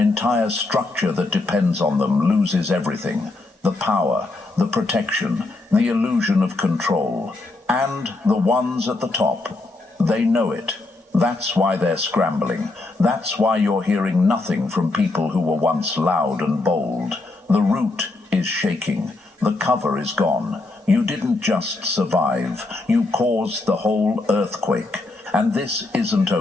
structure that depends on them loses everything. The power, the protection, the illusion of control. And the ones at the top, they know it. That's why they're scrambling. That's why you're hearing nothing from people who were once loud and bold. The root is shaking. The cover is gone. You didn't just survive. You caused the whole earthquake. And this isn't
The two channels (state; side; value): quieter; right; 3.2 dB